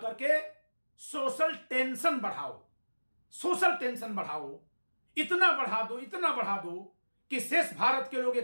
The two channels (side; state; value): both; inverted; correlation -1.00